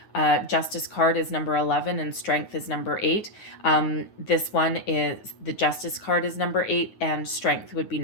Justice card is number 11 and Strength is number 8. This one is, the Justice card is number 8 and Strength would be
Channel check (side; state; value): right; late; 9.3 ms